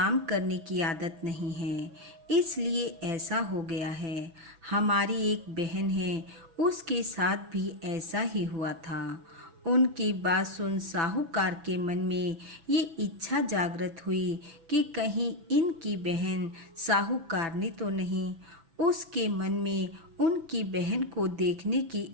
करने की आदत नहीं है, इसलिए ऐसा हो गया है। हमारी एक बहन है, उसके साथ भी ऐसा ही हुआ था। उनकी बात सुन साहूकार के मन में ये इच्छा जागृत हुई कि कहीं इनकी बहन साहूकारनी तो नहीं। उसके मन में उनकी बहन को देखने की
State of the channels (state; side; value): late; left; 6.0 ms